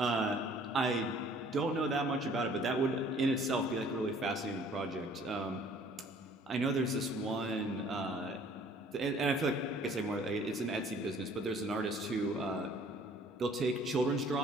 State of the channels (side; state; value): both; normal; correlation 0.55